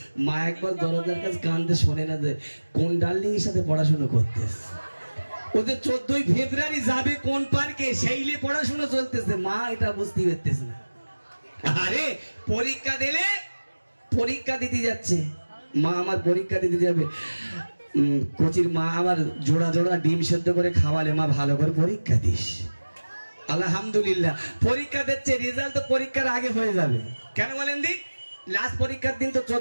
মা একবার দরজার কাছে কানতে শোনে না যে কোন ডার্লিং এর সাথে পড়াশোনা করতে। ওদের 14ই ফেব্রুয়ারি যাবে কোন পার্কে, সেইলে পড়াশোনা চলতেছে। মা এটা বুঝতে পারতেছে না। আরে পরীক্ষা দিলে, পরীক্ষা দিতে যাচ্ছে মা, আমার পরীক্ষা দিতে যাবে। কোচির মা আমার জোড়া জোড়া ডিম সেদ্ধ করে খাওয়ালে, মা ভালো করে পরীক্ষা দিস। আলহামদুলিল্লাহ পরীক্ষা দিচ্ছে, রেজাল্ট তো পরীক্ষার আগে হয়ে যাবে। কেন বলেন দিক? লাস্ট পরীক্ষার দিন তো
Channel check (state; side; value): inverted; both; correlation -1.00